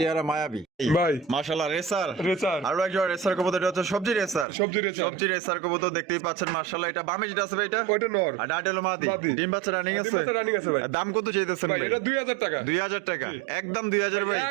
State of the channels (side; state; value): left; drops out; at 4.5 s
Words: মায়াবী ভাই মাশাআল্লাহ। Racer racer. আরো একজন রেসার কবুতর, এটা হচ্ছে সবজি রেসার। সবজি রেসার। সবজি রেসার কবুতর দেখতেই পাচ্ছেন মাশাআল্লাহ। এটা বামে যেটা আছে ভাই, এটা ওইটা নর। আর ডাটা হলো মাদি। মাদি। ডিম বাচ্চা রানিং ডিম আছে। বাচ্চা running আছে ভাই। দাম কত চাইতেছেন ভাই ভাই? এটা 2000 টাকা। 2000 টাকা, একদম 2000 ভাই।